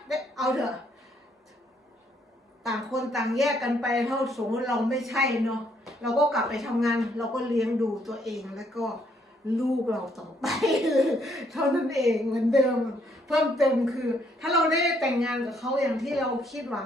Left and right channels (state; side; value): normal; both; correlation 0.70